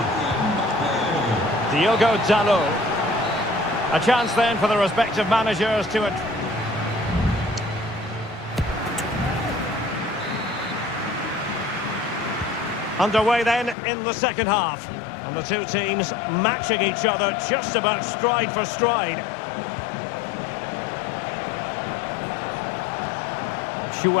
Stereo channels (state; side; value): drops out; right; at 13.8 s